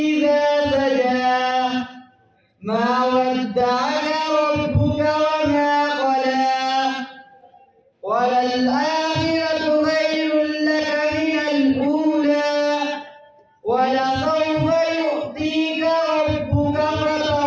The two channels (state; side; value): identical; both; correlation 1.00